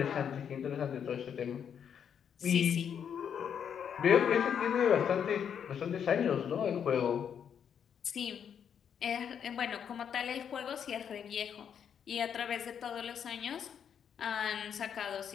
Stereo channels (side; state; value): right; quieter; 8.0 dB